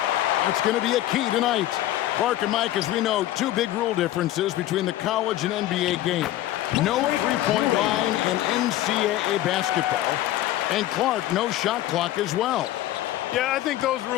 That's going to be a key tonight. Clark and Mike, as we know, two big rule differences between the college and NBA game. No three-point line in NCAA basketball. And Clark, no shot clock as well. Yeah, I think those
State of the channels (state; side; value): quieter; right; 14.3 dB